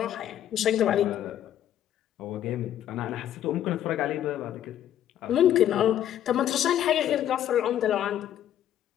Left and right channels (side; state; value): right; quieter; 11.1 dB